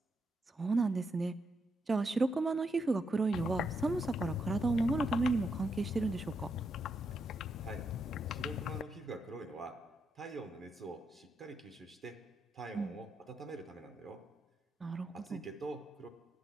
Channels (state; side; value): normal; both; correlation 0.81